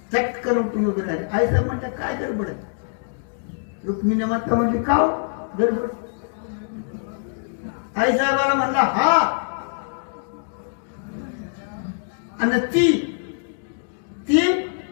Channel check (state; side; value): silent; right; digital silence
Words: चटकन उठून उभे राहिले. आई साहेब म्हणतात काय गडबड आहे. रुक्मिणी माता म्हणली का गडबड. आई साहेबाला म्हणला हा, आणि ती